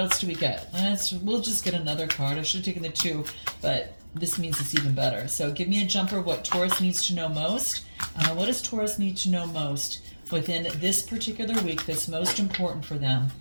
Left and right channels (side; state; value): both; inverted; correlation -1.00